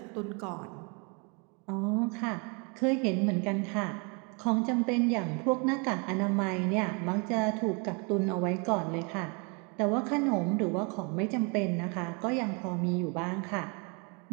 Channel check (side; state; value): left; quieter; 33.3 dB